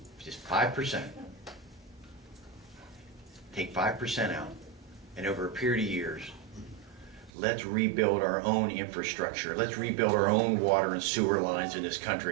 just 5%. Take 5% out, and over a period of years, let's rebuild our own infrastructure. Let's rebuild our own water and sewer lines in this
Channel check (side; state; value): left; drops out; at 7.3 s